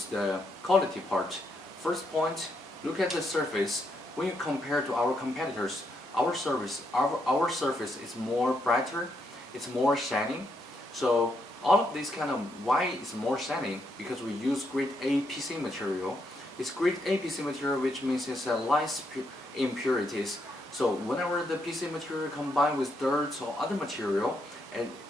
the quality part. First point, look at the surface. When you compare to our competitors, our surface is more brighter, it's more shining. So all of this kind of why it's more shining, because we use grade A PC material. It's grade A PC material, which means it's less impurities. So whenever the PC material combined with dirt or other material,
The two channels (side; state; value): both; normal; correlation 0.78